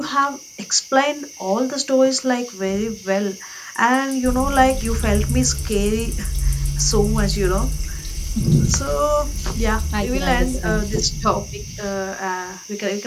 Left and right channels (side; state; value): both; identical; correlation 1.00